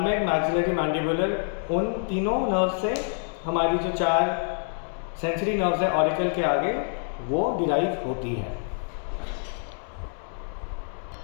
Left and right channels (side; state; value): right; silent; 60 dB below the other